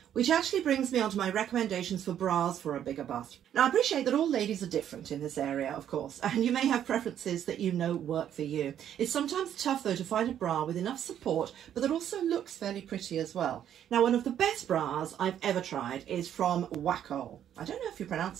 Which actually brings me on to my recommendations for bras for a bigger bust. Now, I appreciate that all ladies are different in this area, of course, and you may have preferences that you know work for you. It's sometimes tough, though, to find a bra with enough support, but that also looks fairly pretty as well. Now, one of the best bras I've ever tried is from XOXO. I don't know if you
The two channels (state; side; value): quieter; left; 10.1 dB